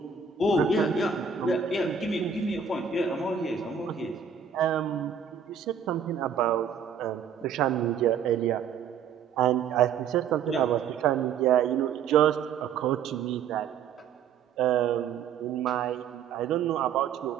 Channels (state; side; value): quieter; left; 7.1 dB